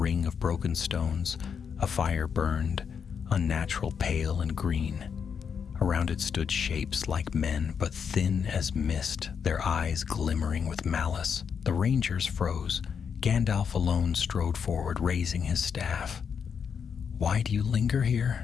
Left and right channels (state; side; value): quieter; right; 6.8 dB